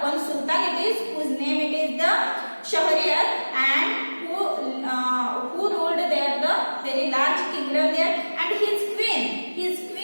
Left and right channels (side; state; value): both; inverted; correlation -1.00